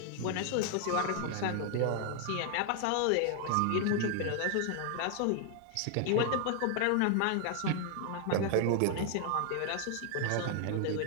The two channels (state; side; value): different; both; correlation 0.00